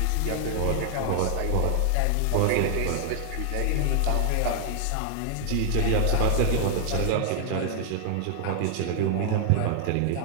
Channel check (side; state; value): both; different; correlation 0.00